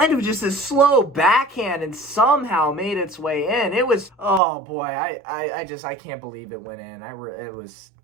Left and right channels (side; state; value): left; drops out; at 4.4 s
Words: of just a slow backhand and somehow made its way in. It was, oh boy, I can't believe it went in.